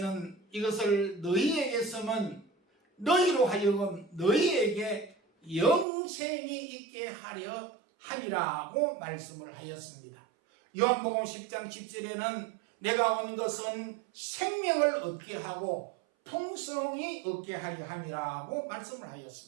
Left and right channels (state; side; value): drops out; left; at 5.9 s